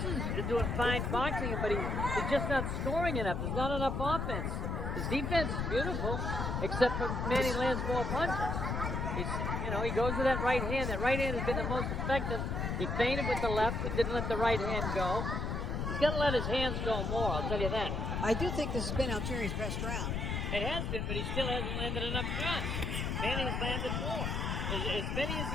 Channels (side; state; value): left; noise; rumble, 1 dB below the sound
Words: is doing fine boxing, but he's just not scoring enough. There's not enough offense. His defense is beautiful, except for Manny lands more punches. He goes to that right hand. That right hand has been the most effective. He feinted with the left, but didn't let the right hand go. He's got to let his hands go more, I'll tell you that. I do think this has been Algieri's best round. It has been, but he still hasn't landed enough shots. Manny has landed more. As many as